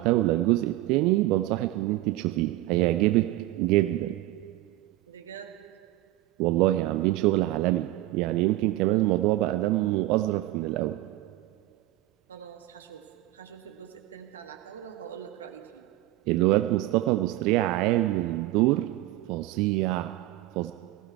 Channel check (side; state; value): left; quieter; 16.4 dB